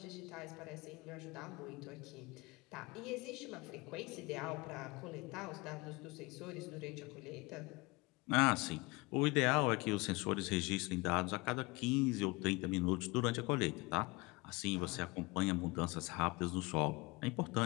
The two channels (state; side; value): quieter; right; 24.7 dB